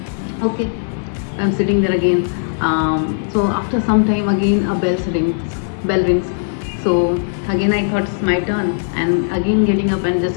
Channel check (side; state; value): right; silent; 67 dB below the other